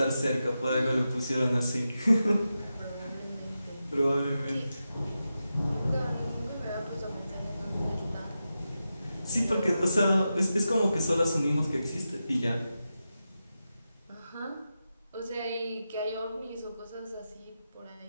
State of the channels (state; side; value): inverted; both; correlation -0.90